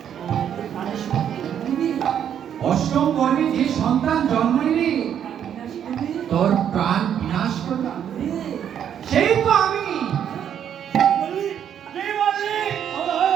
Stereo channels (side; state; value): left; quieter; 9.1 dB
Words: অষ্টম গর্ভে যে সন্তান জন্ম নিলে তোর প্রাণ বিনাশ করলাম, সেই তো আমি।